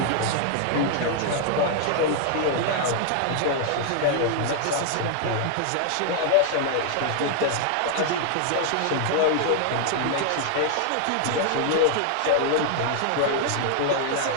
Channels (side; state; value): both; different; correlation 0.00